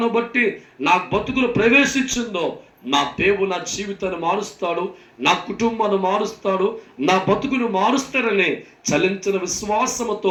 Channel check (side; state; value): both; identical; correlation 1.00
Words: బట్టి నా బతుకులు ప్రవేశించిందో నా దేవుడు నా జీవితాన్ని మారుస్తాడు, నా కుటుంబాన్ని మారుస్తాడు, నా బతుకును మారుస్తాడని చలించిన